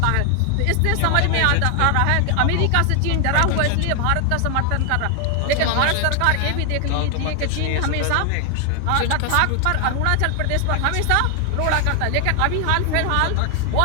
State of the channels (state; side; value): different; both; correlation 0.00